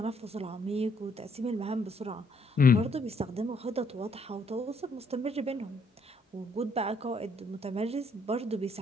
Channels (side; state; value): both; normal; correlation 0.69